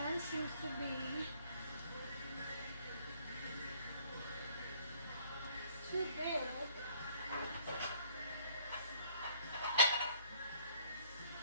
seems to be too big.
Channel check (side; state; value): both; inverted; correlation -0.60